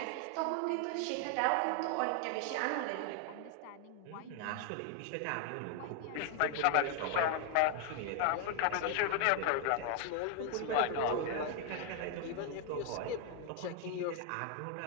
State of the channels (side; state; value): both; different; correlation 0.00